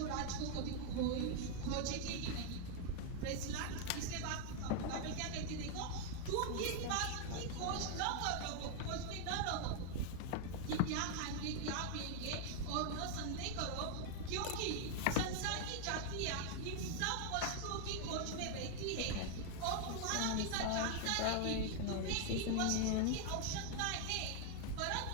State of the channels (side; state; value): both; different; correlation 0.00